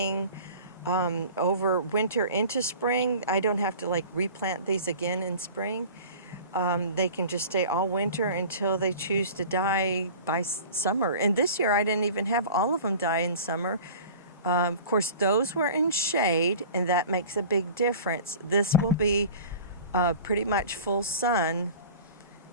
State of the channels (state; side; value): inverted; both; correlation -0.41